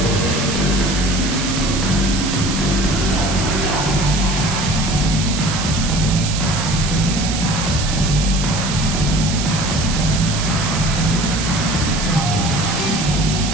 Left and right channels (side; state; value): right; noise; hiss, 5 dB below the sound